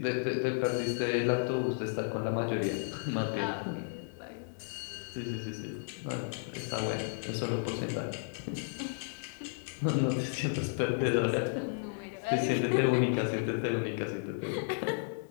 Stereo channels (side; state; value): right; silent; 55 dB below the other